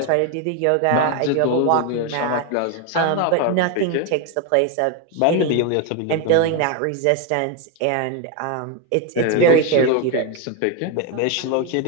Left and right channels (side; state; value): both; different; correlation 0.01